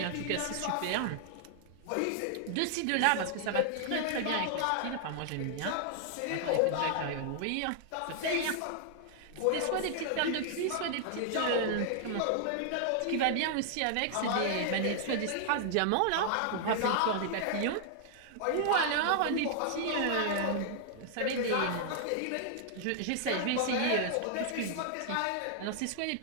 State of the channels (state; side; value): different; both; correlation -0.01